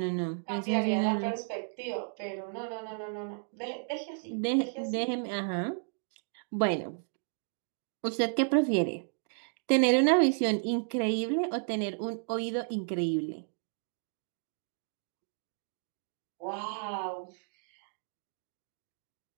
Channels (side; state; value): left; silent; digital silence